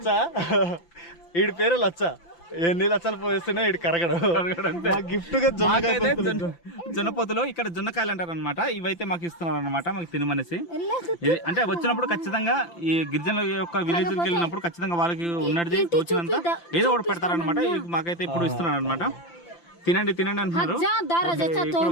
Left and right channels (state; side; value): late; right; 5.9 ms